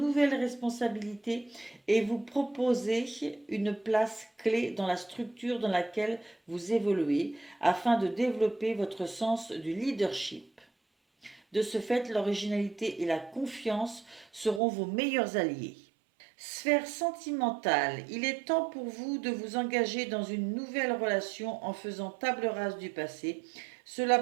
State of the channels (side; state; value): left; drops out; at 14.6 s